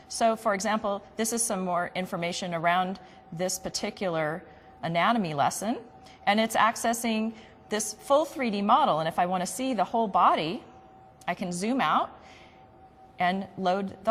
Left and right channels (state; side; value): identical; both; correlation 1.00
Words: So for example, this is some more information around this particular anatomy lesson, and it's accessing this full 3D model. And if I want to see the whole body, I can zoom out and load the